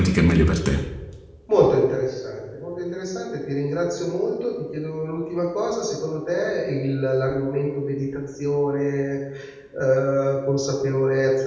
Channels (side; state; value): both; identical; correlation 1.00